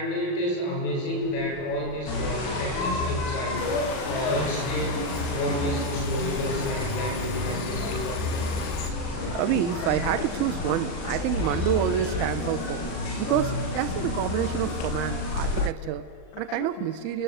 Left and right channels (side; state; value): right; late; 40 ms